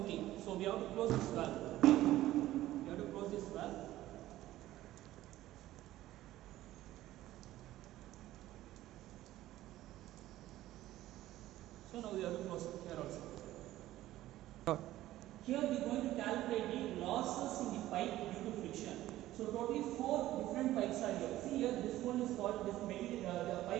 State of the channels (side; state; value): left; quieter; 15.0 dB